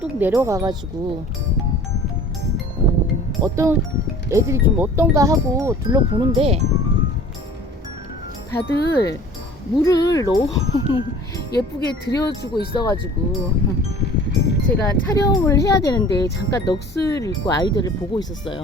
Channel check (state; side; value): normal; both; correlation 0.47